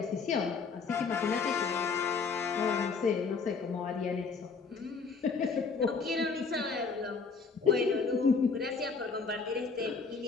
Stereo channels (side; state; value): right; quieter; 4.9 dB